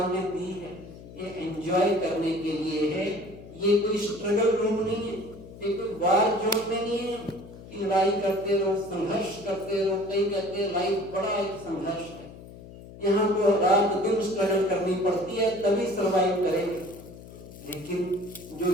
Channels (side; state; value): left; noise; hum, 16 dB below the sound